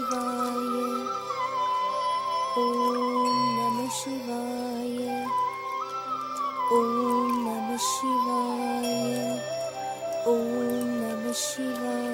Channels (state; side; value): identical; both; correlation 1.00